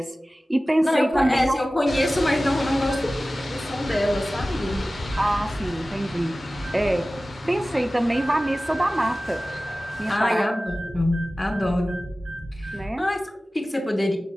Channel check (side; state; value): both; normal; correlation 0.96